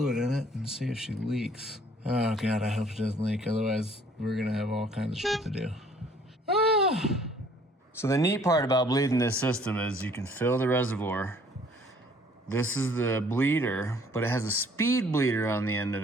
in it and see if she leaks. Oh God, I hope it doesn't leak. Otherwise, we're gonna have all kinds of shit to do. So the neat part about bleeding this system is you can fill the reservoir. This is the bleeder, but it has a speed bleeder on the end of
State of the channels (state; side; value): normal; both; correlation 0.58